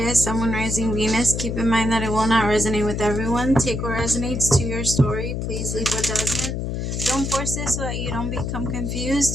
Sun, Moon, Rising, Venus. Keep in mind that it will not resonate with everyone. Take what resonates to your story. Please leave what doesn't. Don't force it so that you don't become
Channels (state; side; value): noise; left; hum, 2 dB below the sound